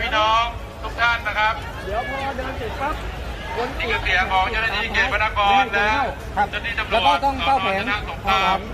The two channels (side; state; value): both; identical; correlation 1.00